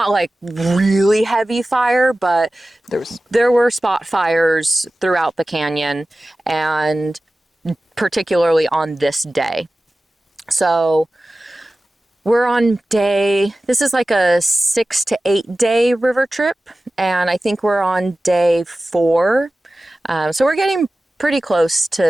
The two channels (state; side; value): normal; both; correlation 0.96